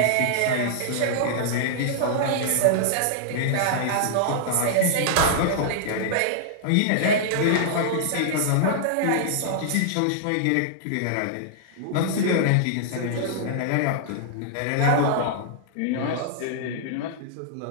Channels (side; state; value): both; different; correlation -0.01